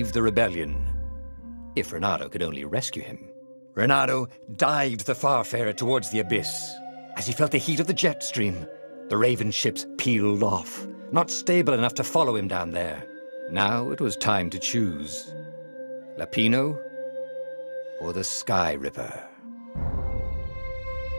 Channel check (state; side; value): inverted; both; correlation -1.00